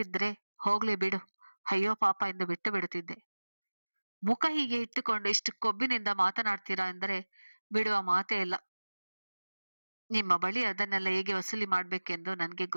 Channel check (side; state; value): both; inverted; correlation -1.00